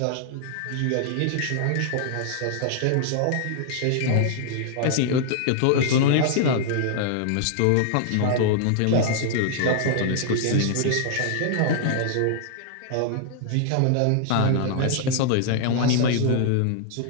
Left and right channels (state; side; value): different; both; correlation 0.00